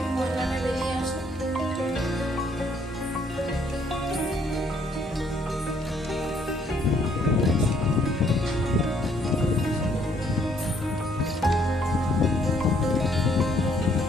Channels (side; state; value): both; normal; correlation 0.66